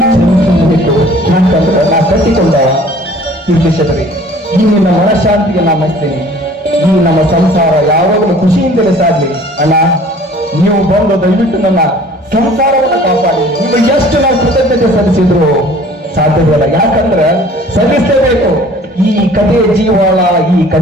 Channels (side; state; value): both; normal; correlation 0.51